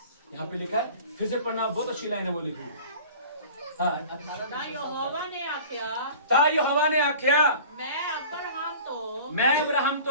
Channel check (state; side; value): inverted; both; correlation -0.42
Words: यहाँ पे लिखा है, फिर से पढ़ना, बहुत अच्छी लाइन है वो लिखी। ता यहोवा ने आख्या, मैं अब्राहम तो